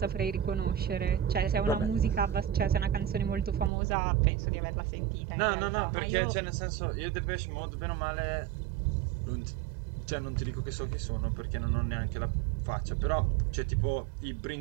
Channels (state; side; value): drops out; left; at 3.7 s